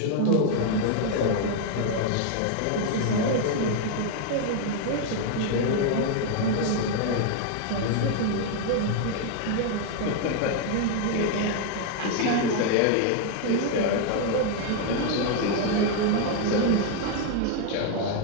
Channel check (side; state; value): both; different; correlation 0.00